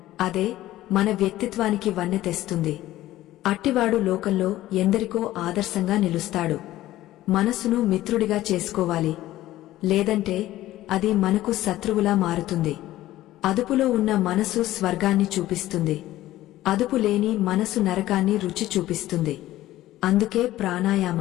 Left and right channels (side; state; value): right; quieter; 15.1 dB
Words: అదే మన వ్యక్తిత్వానికి వన్నె తెస్తుంది. అట్టివాడు లోకంలో ఎందరికో ఆదర్శంగా నిలుస్తాడు. మనసును మిత్రుడిగా చేసుకోవాలి, లేదంటే అది మనకు శత్రువులా మారుతుంది. అదుపులో ఉన్న మనసు స్వర్గాన్ని చూపిస్తుంది, అదుపు లేని మనసు నరకాన్ని రుచి చూపిస్తుంది. అందుకే